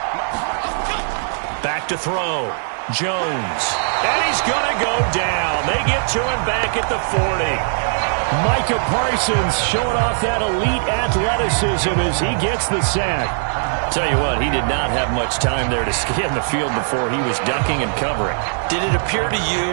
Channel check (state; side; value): silent; left; digital silence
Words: Back to throw. Jones. And he's going to go down. They get to him back at the 40. Micah Parsons showing off that elite athleticism as he gets the sack. Tell you what, he did not have much time there to scan the field before he was ducking and covering. Did it appear to